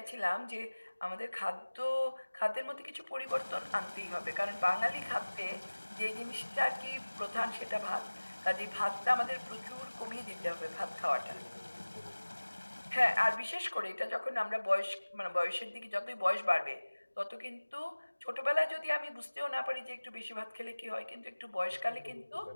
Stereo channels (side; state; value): both; inverted; correlation -1.00